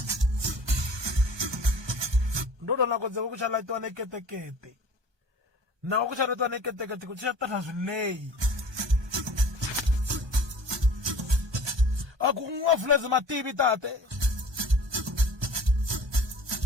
Ndodo na kodze ku chala twa neketekete. Na ku chala twa neketekete ku chala ta swileyi. Aku ngafuleze mativi tate.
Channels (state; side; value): late; left; 1.2 ms